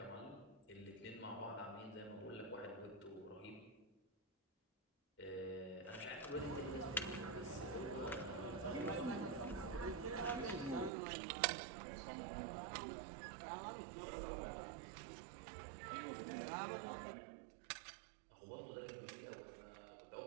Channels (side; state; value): left; drops out; at 10.9 s